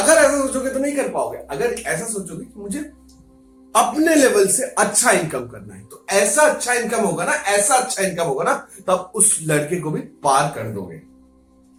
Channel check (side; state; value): both; identical; correlation 1.00